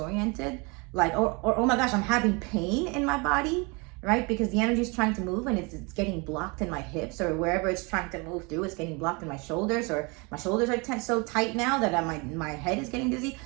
Like, or oh my gosh, I'm having pain in my body, right? Because the energy is trying to move and it's getting blocked in my hips, or wherever it's trying to move through, it's getting blocked in my shoulders, or my shoulders are so tight now that my head is getting dizzy.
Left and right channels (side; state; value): left; quieter; 29.1 dB